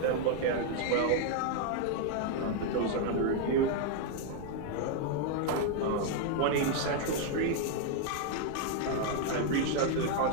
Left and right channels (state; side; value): different; both; correlation 0.00